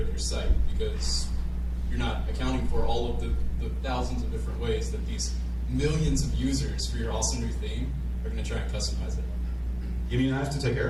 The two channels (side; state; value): both; identical; correlation 1.00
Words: your site because you're not accounting for all of the thousands of different ways that these millions of users for your awesome new theme are going to try and customize it. You mean I have to take care